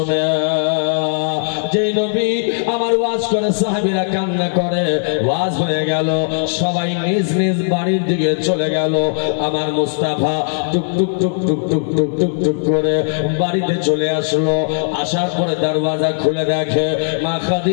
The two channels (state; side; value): silent; right; digital silence